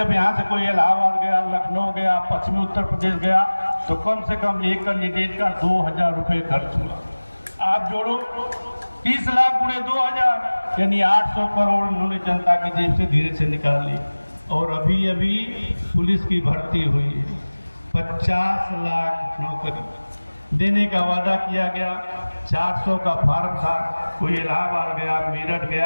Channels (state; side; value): inverted; both; correlation -1.00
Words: यहाँ से कोई इलाहाबाद गया, लखनऊ गया, पश्चिमी उत्तर प्रदेश गया, तो कम से कम एक कैंडिडेट का 2000 रुपये खर्च हुआ। आप जोड़ो 30 लाख गुणे 2000, यानी 800 करोड़ उन्होंने जनता की जेब से धीरे से निकाल ली। और अभी अभी पुलिस की भर्ती हुई है, 50 लाख नौकरी देने का वादा किया गया। 400 का फार्म था, कोई इलाहाबाद गया, मेरठ